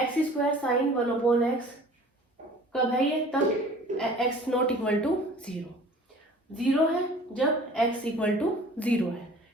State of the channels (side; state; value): both; normal; correlation 0.47